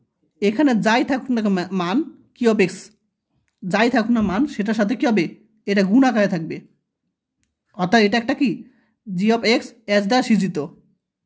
এখানে যাই থাকুক না মান, কিউ অফ এক্স যাই থাকুক না মান, সেটার সাথে কী হবে, এটা গুণ আকারে থাকবে, অর্থাৎ এটা একটা কি জি অফ এক্স এস দ্বারা সৃজিত,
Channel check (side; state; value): both; identical; correlation 1.00